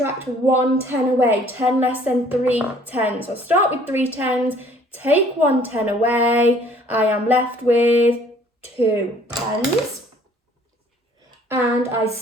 1 10 away, 10 less than 3 tens. So I'll start with 3 tens, take 1 10 away, I am left with 2 tens. And I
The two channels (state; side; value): normal; both; correlation 0.57